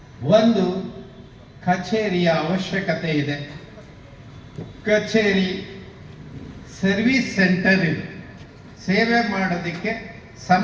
ಒಂದು ಕಚೇರಿಯ ಅವಶ್ಯಕತೆ ಇದೆ. ಕಚೇರಿ ಸರ್ವಿಸ್ ಸೆಂಟರ್ ಇದು, ಸೇವೆ ಮಾಡೋದಕ್ಕೆ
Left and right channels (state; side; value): identical; both; correlation 1.00